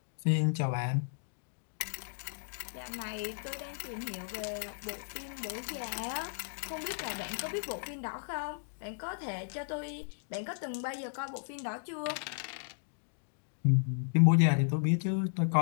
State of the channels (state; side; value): silent; right; digital silence